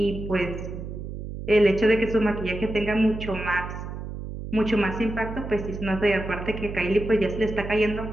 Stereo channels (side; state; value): right; noise; hum, 8 dB below the sound